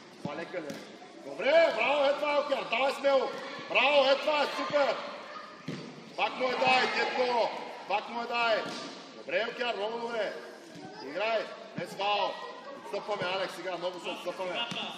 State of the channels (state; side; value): identical; both; correlation 1.00